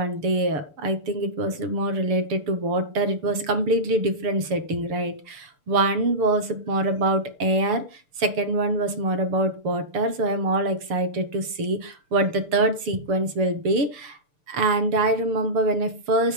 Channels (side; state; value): left; late; 6.7 ms